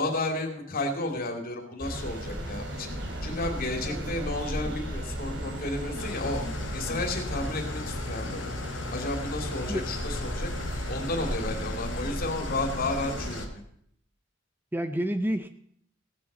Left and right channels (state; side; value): normal; both; correlation 0.42